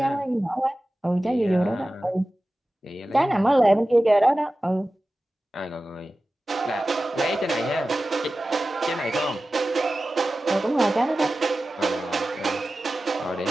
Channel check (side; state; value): both; normal; correlation 0.95